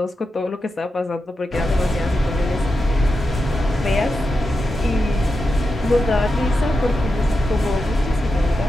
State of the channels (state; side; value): normal; both; correlation 0.89